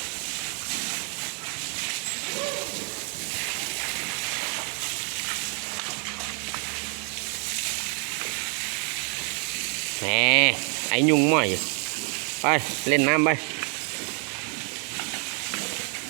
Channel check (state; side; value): quieter; left; 38.0 dB